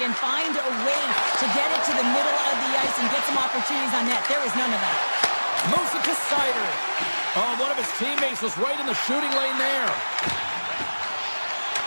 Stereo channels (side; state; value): both; inverted; correlation -1.00